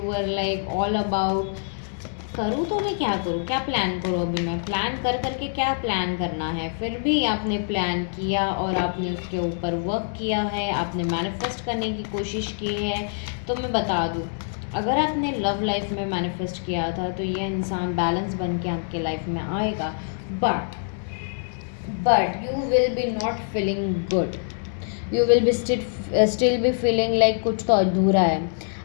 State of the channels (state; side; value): silent; right; 62 dB below the other